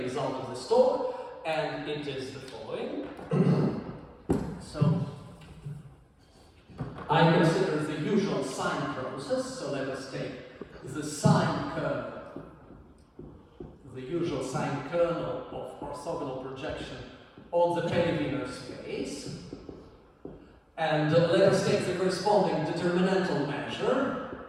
result of this talk, and it is the following. So I consider the usual sine process, so let us take the sine kernel, the usual sine kernel of orthogonal projection on the Peyrière space, and let us take the corresponding determinantal measure,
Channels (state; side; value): identical; both; correlation 1.00